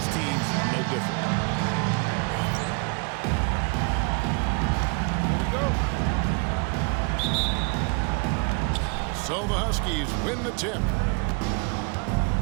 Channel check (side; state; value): left; quieter; 33.3 dB